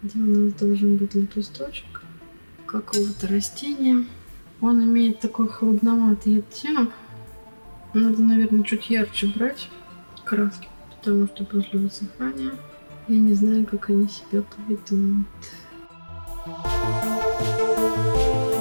где у нас должен быть лепесточек какого-то растения. Он имеет такой холодноватый оттенок. Надо, наверное, чуть ярче брать краски, потому что после высыхания я не знаю, как они себя поведут.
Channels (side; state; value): both; inverted; correlation -1.00